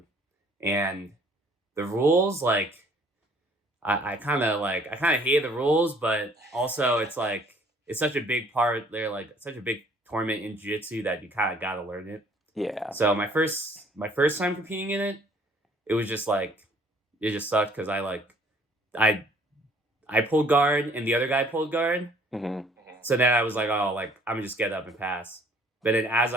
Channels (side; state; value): both; normal; correlation 0.58